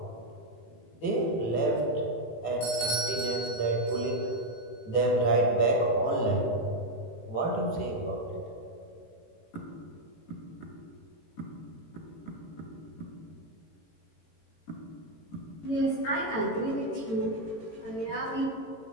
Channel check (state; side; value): late; right; 18 ms